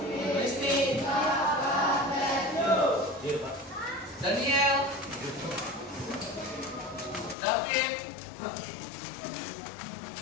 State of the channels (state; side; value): drops out; right; at 7.4 s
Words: Kristi. Daniel. David.